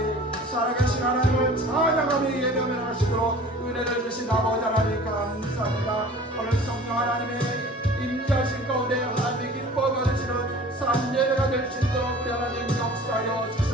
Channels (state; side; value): normal; both; correlation 0.44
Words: 살아계신 하나님을 찬양하며 예배하며 하시도록 은혜를 주신 아버지 하나님 감사합니다. 오늘 성령 하나님의 임재하신 가운데 하나님의 기뻐 받으시는 산 예배가 될 수 있도록 우리 하나님 역사하여